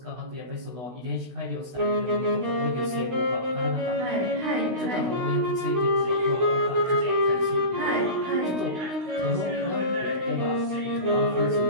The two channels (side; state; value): left; late; 16 ms